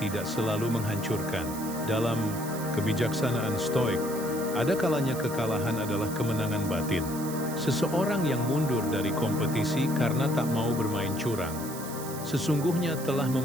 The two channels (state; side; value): noise; right; hiss, 12 dB below the sound